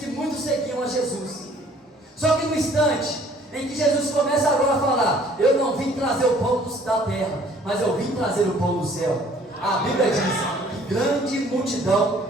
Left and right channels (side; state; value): both; normal; correlation 0.57